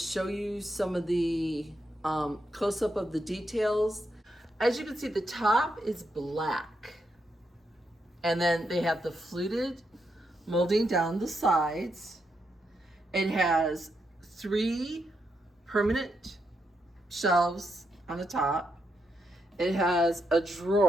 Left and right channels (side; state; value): both; normal; correlation 0.82